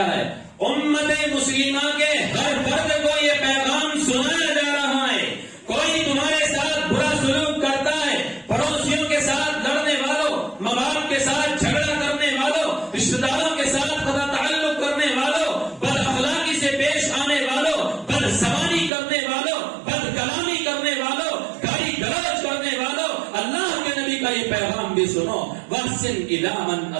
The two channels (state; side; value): drops out; left; at 18.9 s